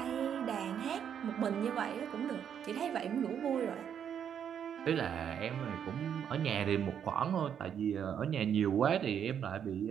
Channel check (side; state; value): left; quieter; 8.5 dB